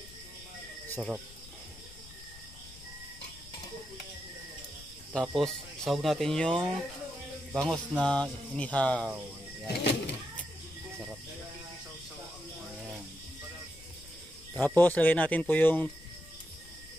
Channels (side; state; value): left; noise; rumble, 19 dB below the sound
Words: Sarap. Tapos, sahog natin yung bangos na inihaw. Yan. Sarap. Ayan. Tapos, lagay natin po yung